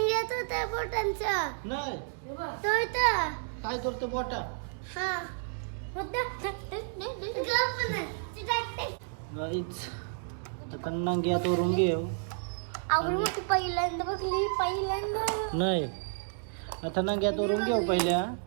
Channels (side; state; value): left; silent; digital silence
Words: नाही काय करतो बोटा आता नंग्यात वरून घेऊ नाही आता नंग्यात वरून घेऊ पहिल्या